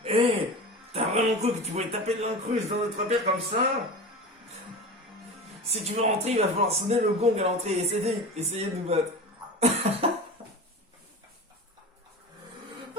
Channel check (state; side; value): normal; both; correlation 0.30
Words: Eh, t'as vraiment cru que tu pouvais taper de l'incruste dans notre bière comme ça? Si tu veux rentrer, il va falloir sonner le gong à l'entrée et essayer de nous battre.